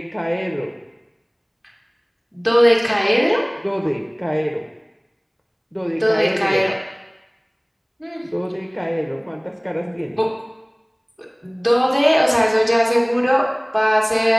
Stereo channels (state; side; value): identical; both; correlation 1.00